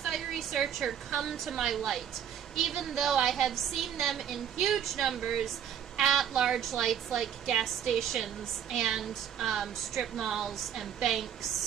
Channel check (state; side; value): quieter; left; 9.1 dB